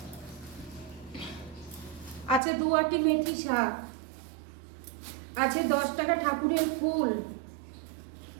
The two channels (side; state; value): left; drops out; at 2.4 s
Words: আছে 2 আটি মেথি শাক, আছে 10 টাকা ঠাকুরের ফুল,